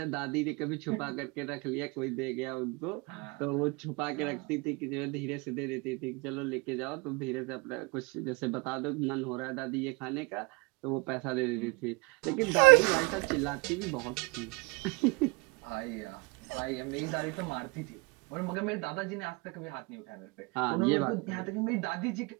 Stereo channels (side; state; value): left; quieter; 28.6 dB